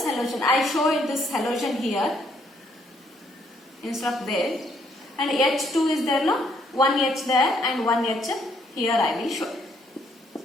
halogen. I show it this halogen here instead of there, and H2 is there, no? One H there and one H here I will show.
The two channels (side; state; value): both; normal; correlation 0.69